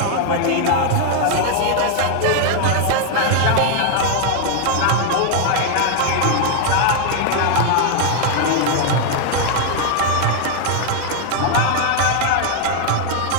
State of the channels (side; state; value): both; different; correlation 0.00